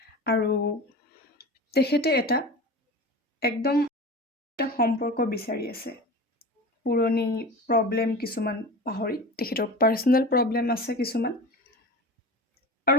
আৰু তেখেতে একদম এটা সম্পৰ্ক বিচাৰি আছে। পুৰণি প্ৰব্লেম কিছুমান পাহৰি, তেখেতৰ পাৰ্চনেল প্ৰব্লেম আছে কিছুমান।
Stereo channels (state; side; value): normal; both; correlation 0.32